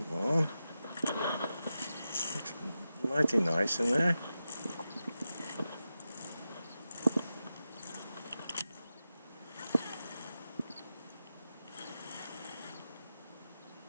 on. Looks mighty nice in there.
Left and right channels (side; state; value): both; inverted; correlation -0.91